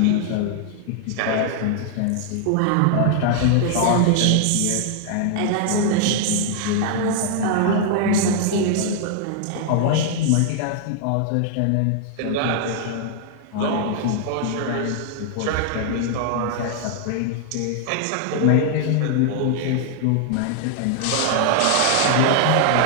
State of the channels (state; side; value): different; both; correlation 0.00